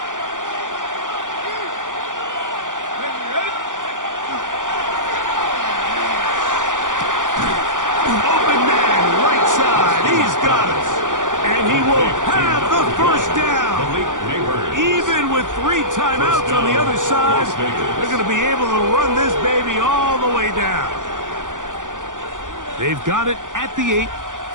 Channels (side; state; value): left; late; 0.87 ms